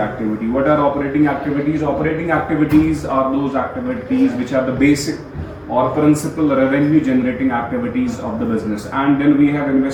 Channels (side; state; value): both; identical; correlation 1.00